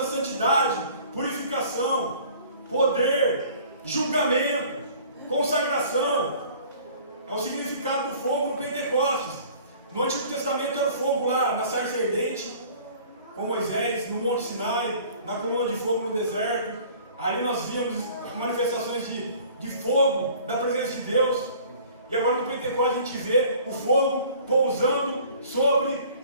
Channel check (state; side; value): inverted; both; correlation -0.50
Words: santidade, purificação, poder, julgamento, consagração. É o significado do fogo no Pentecostes. No Antigo Testamento era o fogo lá na sarça ardente, com Moisés, no Monte Sinai, na coluna de fogo no deserto. Ali nós víamos manifestações de fogo, da presença de Deus. E agora no Pentecostes a gente vê o fogo pousando sobre